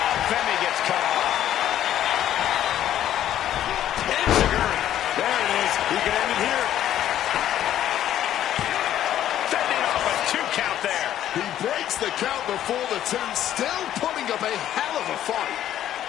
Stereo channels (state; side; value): quieter; right; 11.6 dB